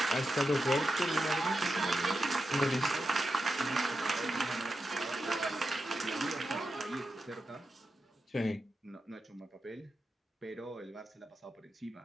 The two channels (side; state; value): both; normal; correlation 0.89